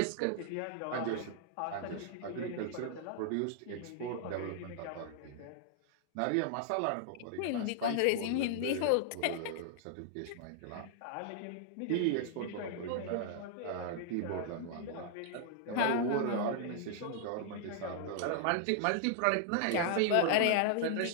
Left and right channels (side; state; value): both; different; correlation -0.01